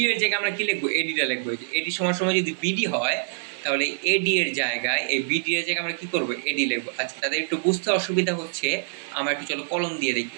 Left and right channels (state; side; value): silent; left; 62 dB below the other